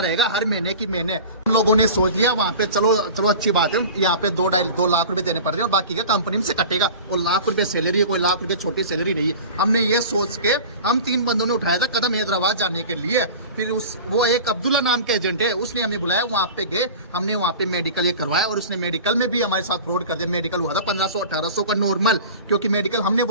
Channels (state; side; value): inverted; both; correlation -0.37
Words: हर महीने की महीने। हम लोगों ने सोच लिया वहां पे चलो अच्छी बात है, यहाँ पे 2 लाख रुपए देने पड़ रहे हैं और बाकी का कंपनी में से कटेगा। और लाख रुपए सैलरी है, कोई लाख रुपए छोटी सैलरी नहीं है। हमने ये सोच के हम 3 बंदों ने उठाया था कदम हैदराबाद जाने के लिए। फिर वो एक अब्दुल्ला नाम के एजेंट है, उसने हमें बुलाया, वहां पे गए, हमने वहां पे मेडिकल ये करवाया और उसने मेडिकल में भी हमारे साथ फ्रॉड कर दिया। मेडिकल हुआ था 1500-1800 का नॉर्मल, क्योंकि मेडिकल हमने